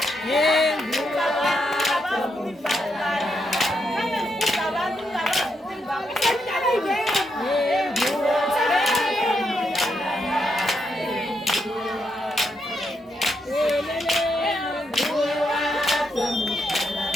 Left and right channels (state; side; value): normal; both; correlation 0.80